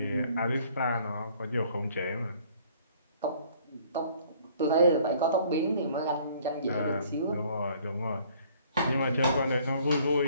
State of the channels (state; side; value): inverted; both; correlation -0.58